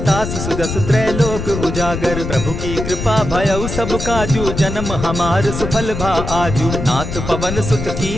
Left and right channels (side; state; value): left; noise; rumble, 5 dB below the sound